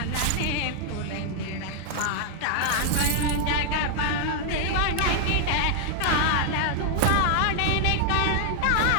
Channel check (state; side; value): different; both; correlation 0.00